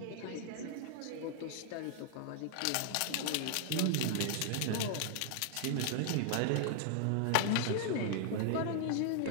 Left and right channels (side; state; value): both; different; correlation 0.00